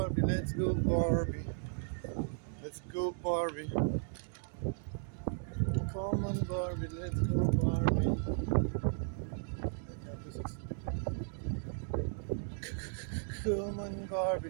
let's go Barbie. Let's go Barbie. Come on Barbie, let's go Barbie. Come on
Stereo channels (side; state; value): left; silent; 54 dB below the other